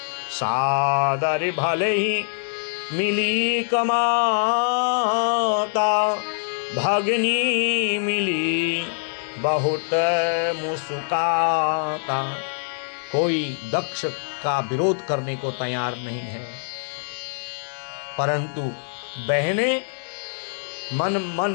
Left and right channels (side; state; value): right; silent; digital silence